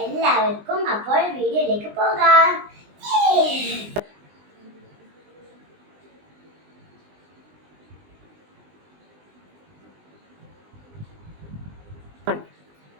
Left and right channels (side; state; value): left; late; 20 ms